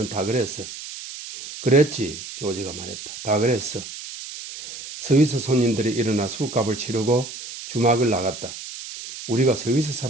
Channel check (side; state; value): right; noise; hiss, 11 dB below the sound